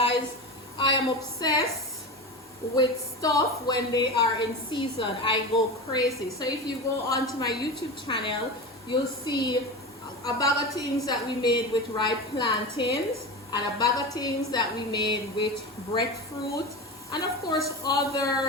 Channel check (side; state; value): both; normal; correlation 0.25